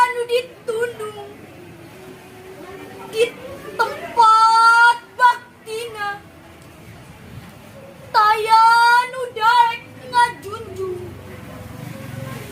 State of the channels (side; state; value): both; identical; correlation 1.00